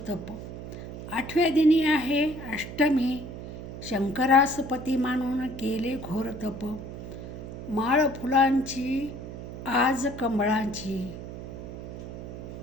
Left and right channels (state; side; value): noise; right; hum, 10 dB below the sound